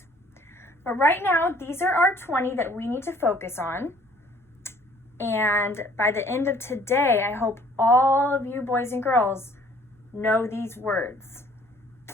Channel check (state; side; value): normal; both; correlation 0.57